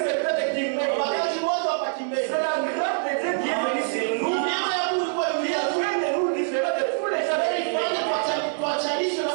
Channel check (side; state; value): left; silent; digital silence